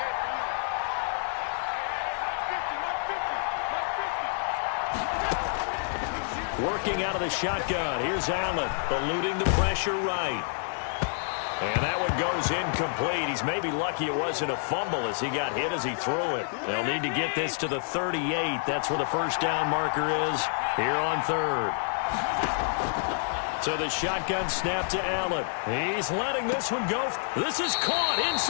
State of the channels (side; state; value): right; silent; 58 dB below the other